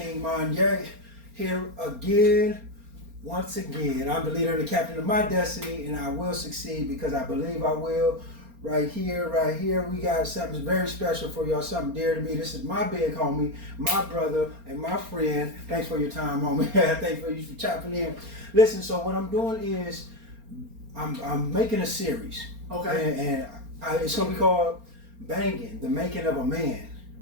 Monye here again, once again. I'm the leader and the captain of my destiny, and I will succeed because I believe I will. Right here, we got something very special for y'all, something dear to me. This is my big homie, my brother, and my friend. Thanks for your time, homie. Thanks for you for chopping in. Listen, so what I'm doing is I'm making a series. Okay. And it's gonna be called Bangin, the Making of a Man.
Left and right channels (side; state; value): left; late; 4.3 ms